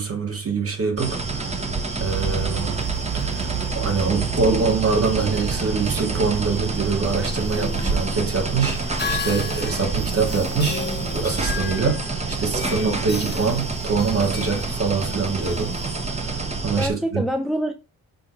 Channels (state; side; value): quieter; left; 3.8 dB